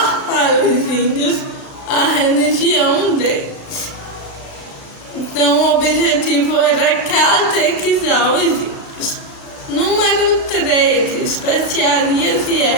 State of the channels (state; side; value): late; right; 35 ms